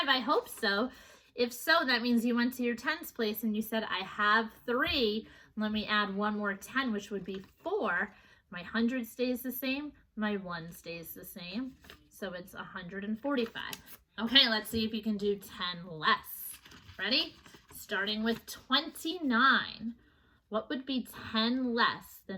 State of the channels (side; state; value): both; identical; correlation 1.00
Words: I hope so. If so, that means you went to your tens place and you said, I have 3. Let me add one more 10, which would be 4. My 100 stays the same. My 1 stays the same. So it's 145. Okay, let's see if you can do 10 less. Ready? Starting with 29. What would be 10 less